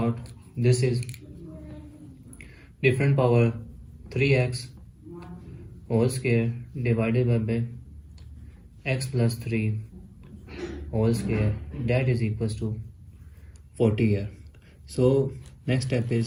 this is different power 3x whole square divided by x plus 3 whole square, that is equals to 40 here. So next step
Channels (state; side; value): identical; both; correlation 1.00